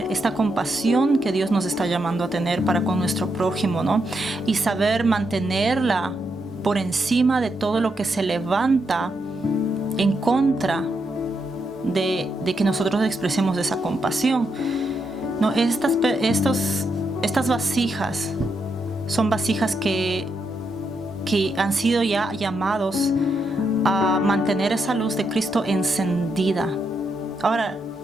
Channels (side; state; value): both; normal; correlation 0.81